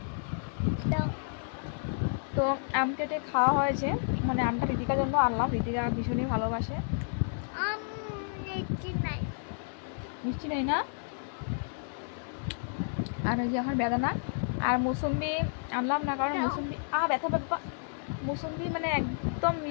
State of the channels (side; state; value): right; silent; digital silence